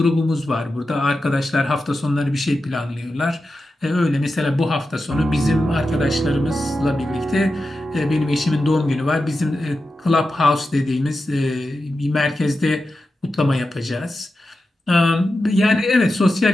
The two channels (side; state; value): both; normal; correlation 0.91